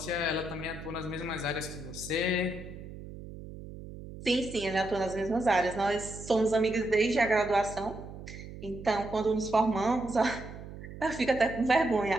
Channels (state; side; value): noise; right; hum, 13 dB below the sound